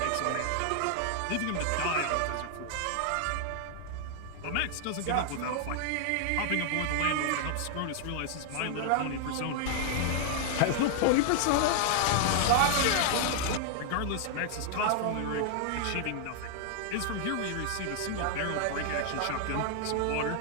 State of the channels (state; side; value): different; both; correlation 0.00